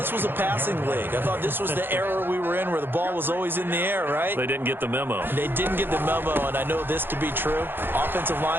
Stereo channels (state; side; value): late; left; 0.10 ms